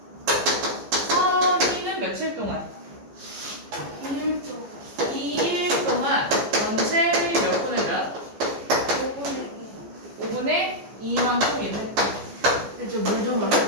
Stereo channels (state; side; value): late; left; 15 ms